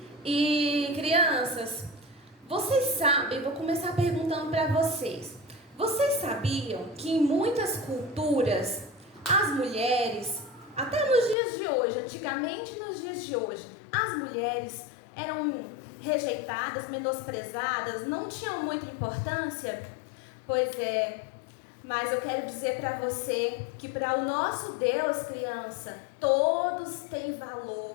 E crianças, vocês sabem, vou começar perguntando para vocês. Vocês sabiam que em muitas culturas as mulheres, até nos dias de hoje, antigamente nos dias de hoje, as mulheres eram rejeitadas, menosprezadas, não tinham muita importância? Pois é. Mas eu quero dizer para você que para o nosso Deus, criança, todos têm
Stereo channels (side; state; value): right; drops out; at 11.4 s